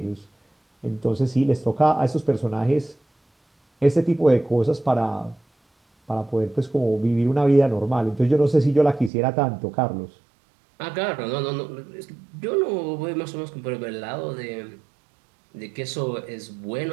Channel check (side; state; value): left; drops out; at 9.1 s